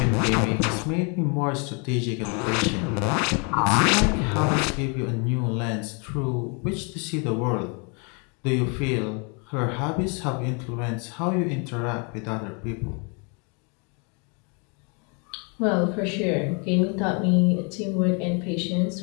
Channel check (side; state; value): right; quieter; 35.3 dB